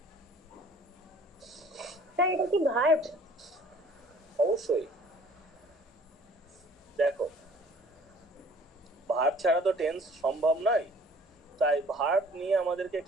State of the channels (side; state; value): both; normal; correlation 0.53